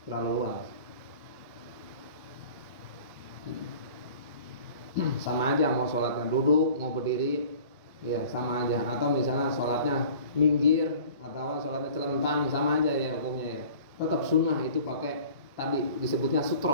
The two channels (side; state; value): both; inverted; correlation -0.46